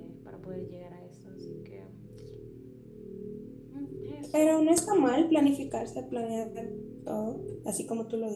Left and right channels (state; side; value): identical; both; correlation 1.00